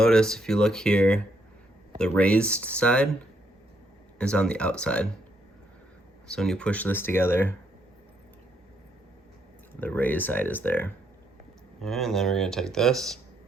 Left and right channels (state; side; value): normal; both; correlation 0.74